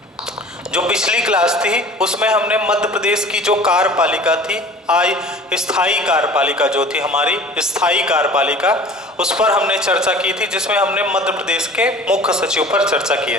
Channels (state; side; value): normal; both; correlation 0.43